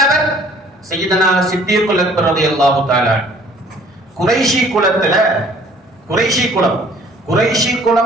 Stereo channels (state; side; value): normal; both; correlation 0.55